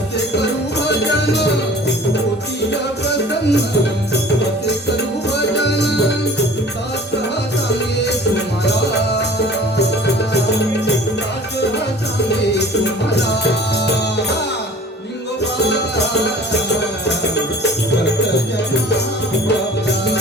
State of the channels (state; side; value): normal; both; correlation 0.46